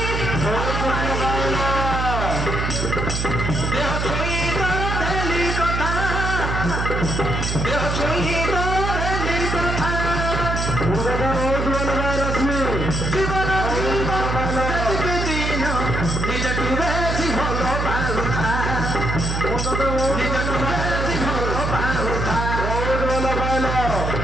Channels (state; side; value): noise; right; hum, 1 dB below the sound